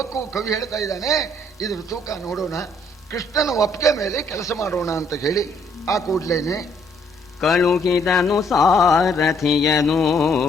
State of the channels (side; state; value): both; normal; correlation 0.67